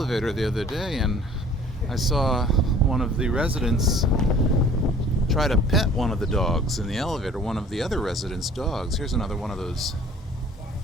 the other day and I saw one of the residents try to pet one of the dogs in the elevator, one of the other residents' dogs. Here's another one of those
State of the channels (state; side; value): normal; both; correlation 0.51